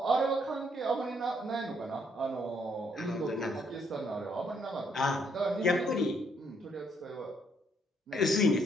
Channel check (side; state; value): both; normal; correlation 0.70